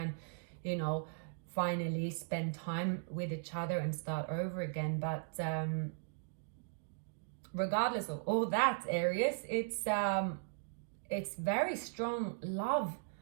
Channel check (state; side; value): silent; left; digital silence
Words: finally spend time with each other and start over again. But regardless of all that, Aries, it's very strong love